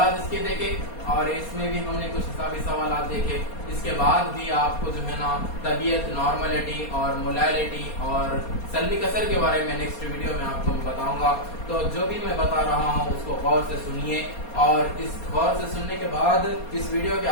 इसके देखे और इसमें भी हमने कुछ हिसाबी सवालात देखे। इसके बाद भी आपको जो है ना तबीयत, नॉर्मलिटी और मोलैलिटी और सल्बी कसर के बारे में नेक्स्ट वीडियो में आपको मैं बताऊंगा। तो जो भी मैं बता रहा हूँ उसको गौर से सुनिए और इस गौर से सुनने के बाद इस वीडियो के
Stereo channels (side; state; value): right; late; 4.2 ms